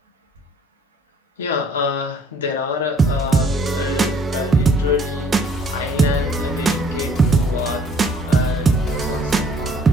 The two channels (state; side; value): normal; both; correlation 0.59